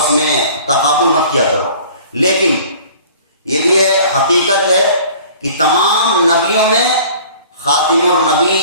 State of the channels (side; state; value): both; inverted; correlation -0.48